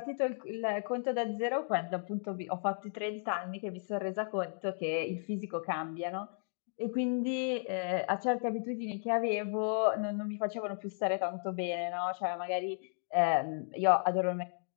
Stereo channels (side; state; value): right; silent; digital silence